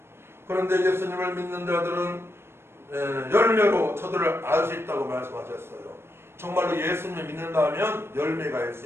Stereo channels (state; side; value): late; left; 0.12 ms